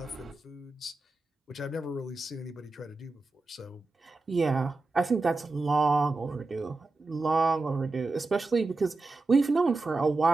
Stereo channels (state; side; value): quieter; left; 3.4 dB